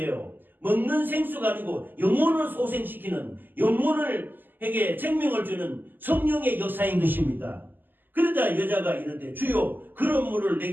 먹는 생수가 아니고 영혼을 소생시키는, 영혼에게 생명을 주는 성령의 역사인 것입니다. 그러자 여자가 이르되 주여 그런 물을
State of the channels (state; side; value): late; left; 0.090 ms